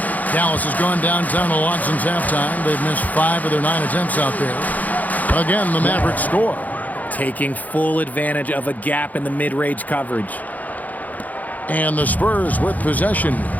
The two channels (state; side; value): late; right; 0.079 ms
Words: Dallas has gone downtown a lot since halftime. They've missed 5 of their 9 attempts out there. Again, the Mavericks score. Taking full advantage of a gap in the mid-range coverage. And the Spurs with possession.